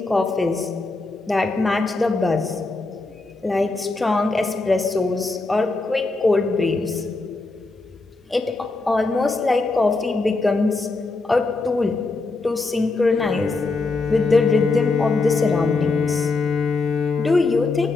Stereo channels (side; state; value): right; quieter; 3.6 dB